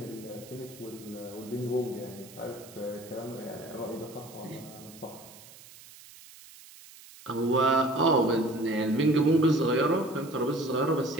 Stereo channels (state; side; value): noise; right; hiss, 20 dB below the sound